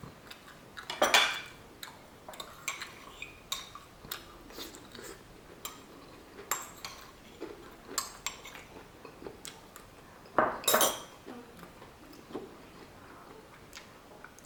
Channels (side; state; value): both; identical; correlation 1.00